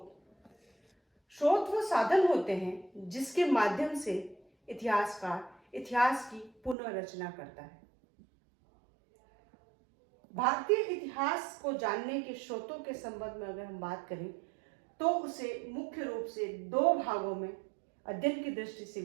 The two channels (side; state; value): left; drops out; at 6.8 s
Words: स्रोत वो साधन होते हैं जिसके माध्यम से इतिहासकार इतिहास की पुनर्रचना करता है। भारतीय इतिहास को जानने के स्रोतों के संबंध में अगर हम बात करें तो उसे मुख्य रूप से दो भागों में अध्ययन की दृष्टि से